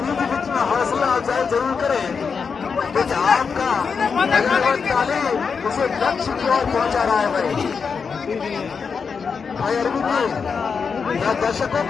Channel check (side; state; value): right; quieter; 5.7 dB